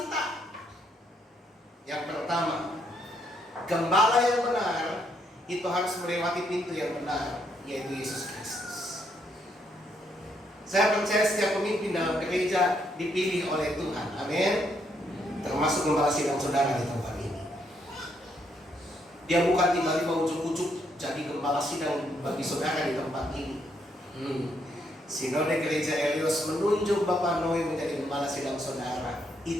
Yang pertama, gembala yang benar itu harus melewati pintu yang benar, yaitu Yesus Kristus. Saya percaya setiap pemimpin dalam gereja dipilih oleh Tuhan. Amin. Termasuk gembala sidang saudara di tempat ini. Dia bukan tiba-tiba ujuk-ujuk jadi gembala sidang bagi saudara di tempat ini. Sinode Gereja Eleos menunjuk Bapak Noe menjadi gembala sidang saudara.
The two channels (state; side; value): normal; both; correlation 0.74